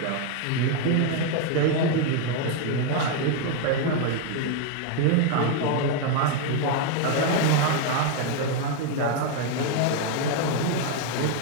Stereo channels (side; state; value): both; different; correlation 0.01